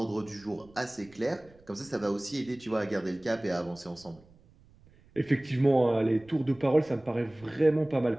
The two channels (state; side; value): noise; right; rumble, 27 dB below the sound